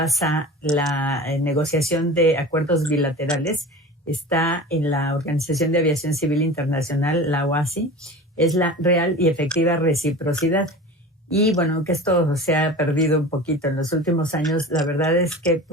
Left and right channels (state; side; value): normal; both; correlation 0.34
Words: la negociación de acuerdos bilaterales está en la Organización de Aviación Civil Internacional, la OACI, es la real y efectiva reciprocidad. Y bueno, que esto se ha perdido un poquito en los últimos años, la verdad es que